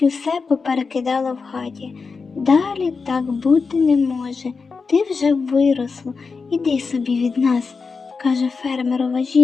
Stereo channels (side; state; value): right; quieter; 4.8 dB